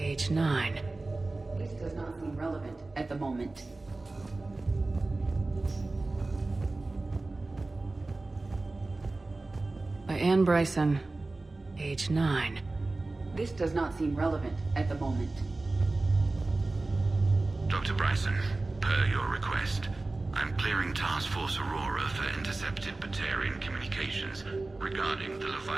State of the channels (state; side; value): quieter; left; 3.2 dB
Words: 9. This does not seem relevant at the moment. By Anne Bryson, age 9. This does not seem relevant at the moment. Dr. Bryson, per your request, I'm clearing Task Force Aurora for intercepted Batarian communications regarding the